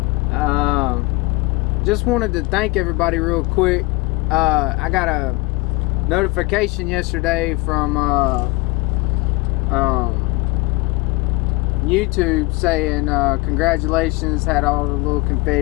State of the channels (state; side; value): quieter; right; 23.4 dB